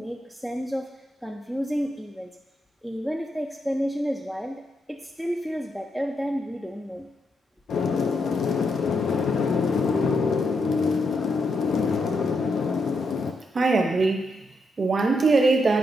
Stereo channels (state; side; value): normal; both; correlation 0.81